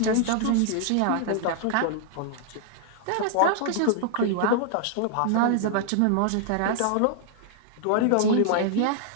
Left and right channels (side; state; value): both; different; correlation 0.00